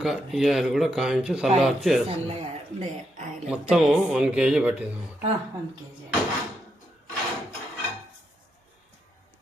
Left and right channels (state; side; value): normal; both; correlation 0.81